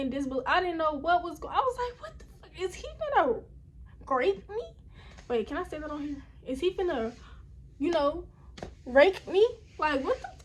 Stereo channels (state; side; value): identical; both; correlation 1.00